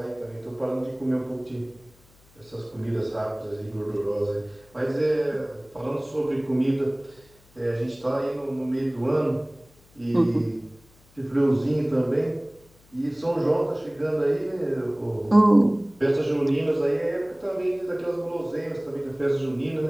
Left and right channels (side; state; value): left; noise; hum, 29 dB below the sound